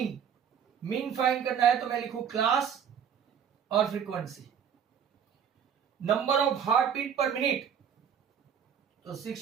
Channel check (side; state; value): left; quieter; 8.1 dB